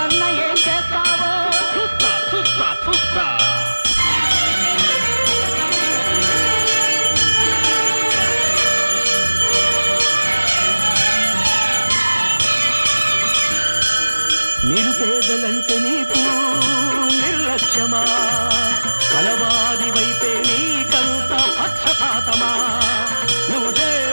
ఏం చేస్తావో చూస్తా చూస్తా చూస్తా నిరుపేదలంటే నీకు నిర్లక్ష్యమా కలవారి వైపే నీకంత పక్షపాతమా నువ్వు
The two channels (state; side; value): inverted; both; correlation -1.00